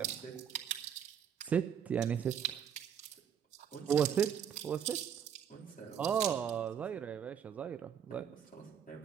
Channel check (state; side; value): quieter; left; 8.3 dB